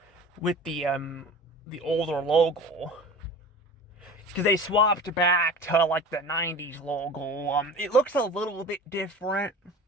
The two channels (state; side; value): normal; both; correlation 0.38